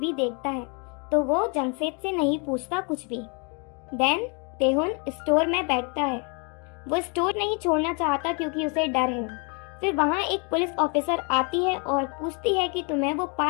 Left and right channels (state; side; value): quieter; right; 34.7 dB